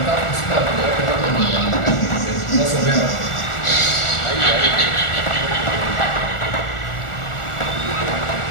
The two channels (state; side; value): late; right; 1.4 ms